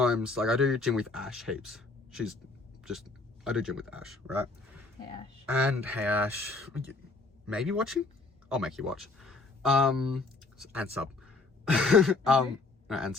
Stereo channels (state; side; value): quieter; right; 3.6 dB